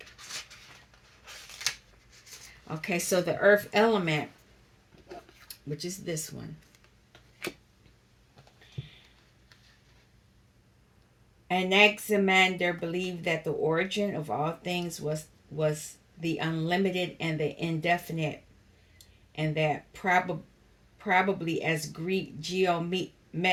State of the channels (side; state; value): both; identical; correlation 1.00